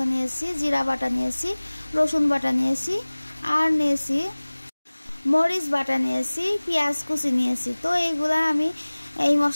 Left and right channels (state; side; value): inverted; both; correlation -1.00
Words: নিয়েছি, জিরা বাটা নিয়েছি, রসুন বাটা নিয়েছি, আর নিয়েছি মরিচ বাটা নিয়েছি, পেঁয়াজ কুচি নিয়েছি। তো এইগুলা আমি এই